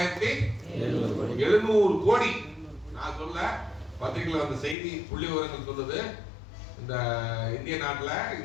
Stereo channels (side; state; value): right; drops out; at 4.8 s